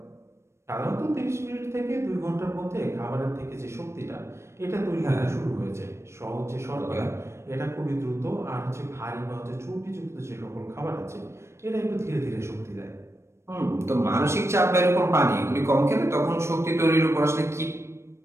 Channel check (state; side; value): late; left; 0.13 ms